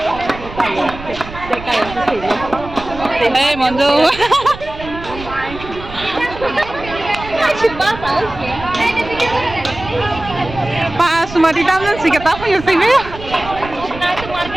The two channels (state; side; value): noise; right; rumble, 13 dB below the sound